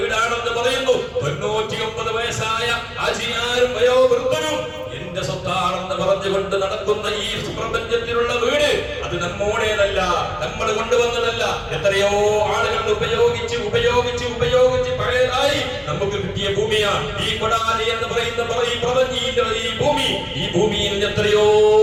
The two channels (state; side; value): identical; both; correlation 1.00